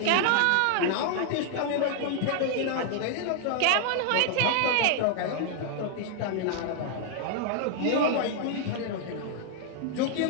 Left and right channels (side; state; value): both; different; correlation 0.00